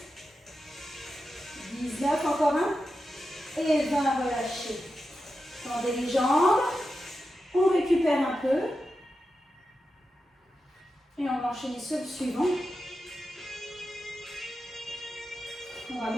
19, encore un. Et 20, relâchez. Tendez les jambes. On récupère un peu. Et on va enchaîner sur le suivant. On va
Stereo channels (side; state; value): both; normal; correlation 0.90